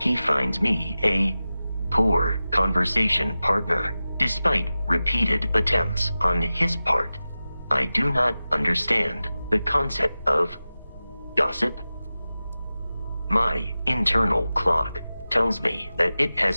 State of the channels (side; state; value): both; inverted; correlation -0.95